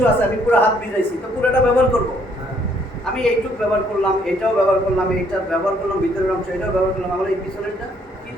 আছে, আমি পুরো হাত ভিজাইছি, তো পুরোটা ব্যবহার করবো। আমি এইটুক ব্যবহার করলাম, এটাও ব্যবহার করলাম, এইটা ব্যবহার করলাম, ভিতরের অংশ এটাও ব্যবহার করলাম, আমার এই পিছনেরটা কি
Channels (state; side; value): normal; both; correlation 0.66